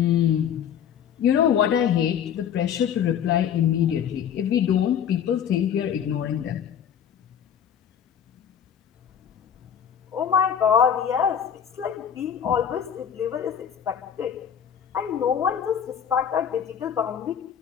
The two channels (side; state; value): right; quieter; 8.6 dB